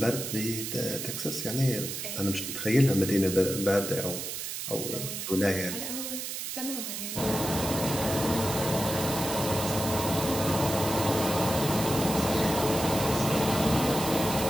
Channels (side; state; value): right; noise; hiss, 5 dB below the sound